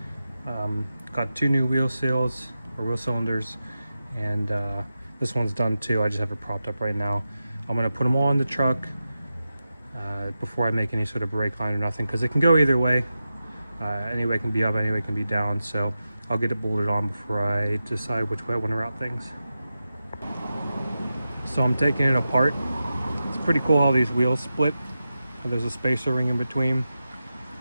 Got 2 new wheel seals or wheel cylinders, and this one's done too. I just have it propped up right now. I'm gonna put them all in the truck before I make any sort of brake line or nothing, because it can go either way. Any way can be up, any way can be down. So I'll get it bolted on before I decide which way I want to route things. So I'm taking it apart. It's pretty cool how these wheels split. There's a spacer ring in between,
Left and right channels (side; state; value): both; inverted; correlation -0.92